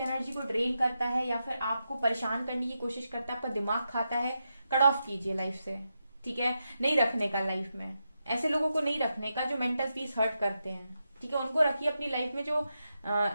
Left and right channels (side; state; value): both; inverted; correlation -0.87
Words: को ड्रेन करता है या फिर आपको परेशान करने की कोशिश करता है, आपका दिमाग खाता है, कट ऑफ कीजिए लाइफ से, ठीक है। नहीं रखने का लाइफ में, ऐसे लोगों को नहीं रखने का जो मेंटल पीस हर्ट करते हैं, ठीक है। उनको रखिए अपनी लाइफ में जो